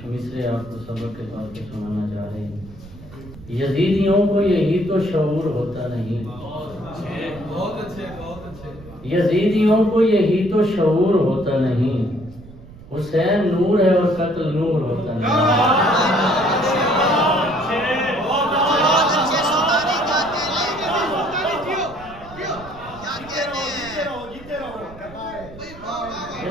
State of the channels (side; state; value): right; noise; rumble, 18 dB below the sound